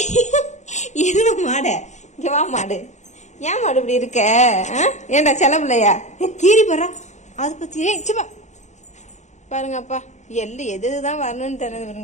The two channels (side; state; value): right; late; 0.34 ms